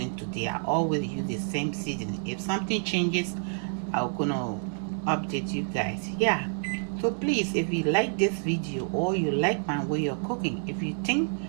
today. I always use the same seasoning. If something changes, I'm gonna update you guys. Yeah, so please, if you like this video or you like my way of cooking, if you think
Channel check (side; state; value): left; silent; 59 dB below the other